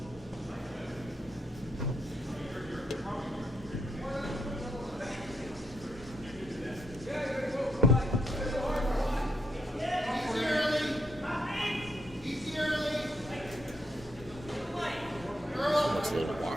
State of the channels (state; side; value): normal; both; correlation 0.77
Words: Looks a little